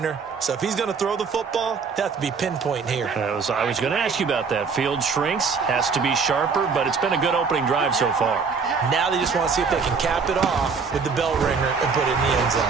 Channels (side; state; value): left; quieter; 5.3 dB